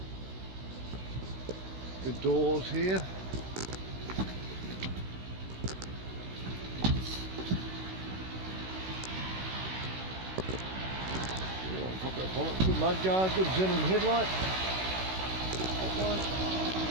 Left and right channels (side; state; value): left; late; 16 ms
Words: Good doors here. Yeah, pop that bonnet. Good mudguard, good xenon headlight.